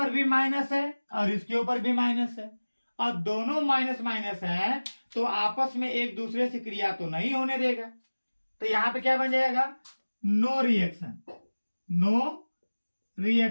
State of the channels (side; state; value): both; inverted; correlation -1.00